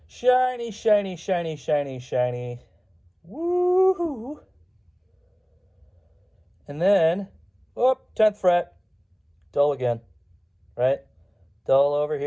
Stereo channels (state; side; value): identical; both; correlation 1.00